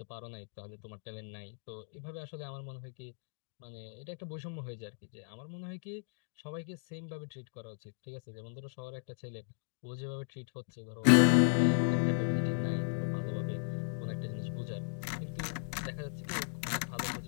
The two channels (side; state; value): right; silent; digital silence